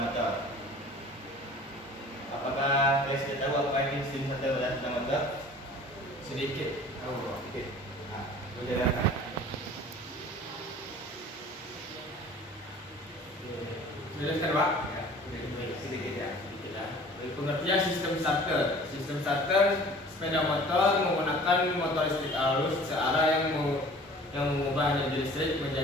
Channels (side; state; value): both; normal; correlation 0.47